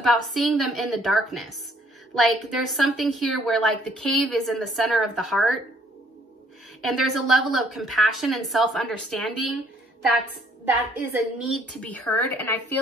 seeing them in the darkness. Like, there's something here where, like, the cave is in the center of the heart, and there's a level of compassion and self-understanding that is a need to be heard. And I feel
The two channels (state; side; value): normal; both; correlation 0.64